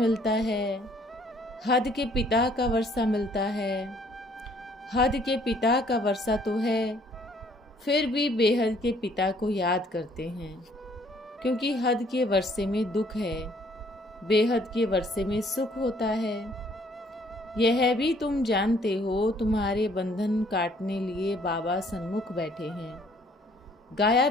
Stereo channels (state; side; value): normal; both; correlation 0.61